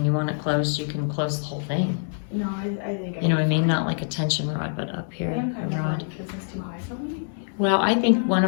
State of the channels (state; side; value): silent; right; digital silence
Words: you want it closed, you can close the whole thing. No, I think you know what I mean? Not like a tension rod, but up here, a rod. Because it's too high for me. Well, I think one